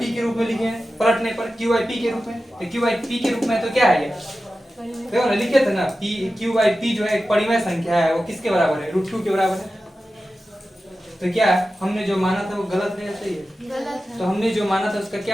के रूप में लिखे हैं। पलटने पर q/p के रूप में, तो q/p के रूप में तो क्या है ये? देखो ना, लिखे थे ना q/p जो है एक परिमेय संख्या है, वो किसके बराबर है? √2 के बराबर है। तो क्या हमने जो माना था वो गलत है या सही है? गलत है। तो हमने जो माना था उसका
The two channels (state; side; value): normal; both; correlation 0.93